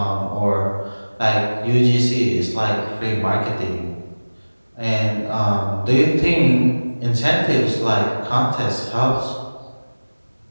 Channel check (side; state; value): both; inverted; correlation -1.00